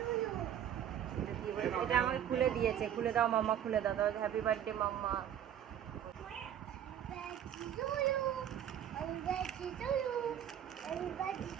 এটা আমাকে খুলে দিয়েছে, খুলে দাও মাম্মা, খুলে দাও। তাহলে হ্যাপি বার্থডে মাম্মা।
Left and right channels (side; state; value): left; quieter; 10.0 dB